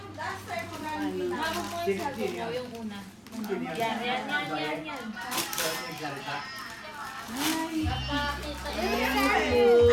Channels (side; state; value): both; identical; correlation 1.00